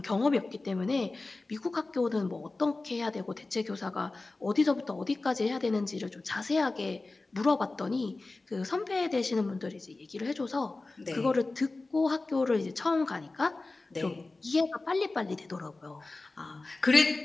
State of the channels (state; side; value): quieter; right; 3.3 dB